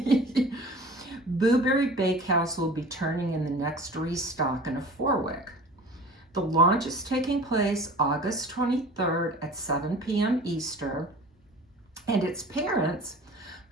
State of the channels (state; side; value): normal; both; correlation 0.41